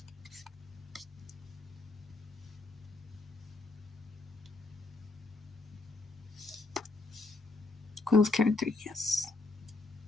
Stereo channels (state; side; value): quieter; right; 3.5 dB